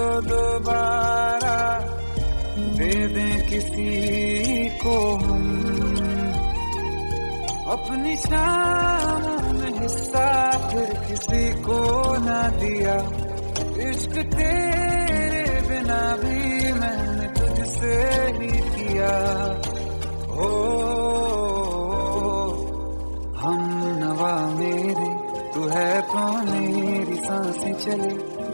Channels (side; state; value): both; inverted; correlation -1.00